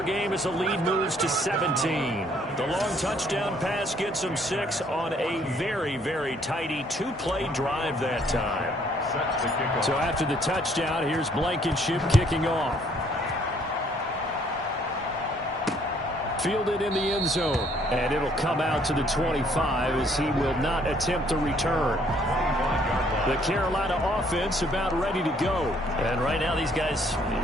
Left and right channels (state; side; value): normal; both; correlation 0.64